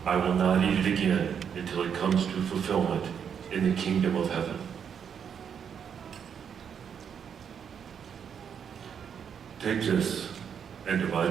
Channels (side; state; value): left; quieter; 7.6 dB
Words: I will not eat it again until it comes to fulfillment in the kingdom of heaven. Take this and